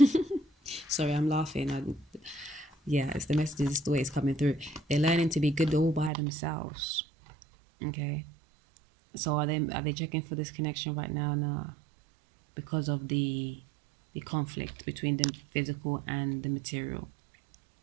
Sorry, I'm laughing. Yeah, it's the message, it's the way it's coming through. They're learning to be good all by themselves. Okay. So are they checking for this connection right now? No, because of the conflict between the physical and the material.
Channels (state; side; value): drops out; left; at 6.1 s